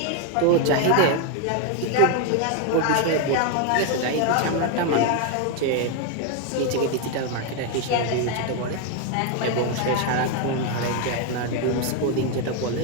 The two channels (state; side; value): different; both; correlation 0.01